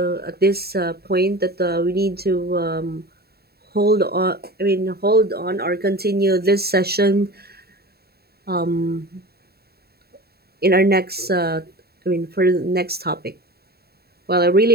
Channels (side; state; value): left; late; 0.46 ms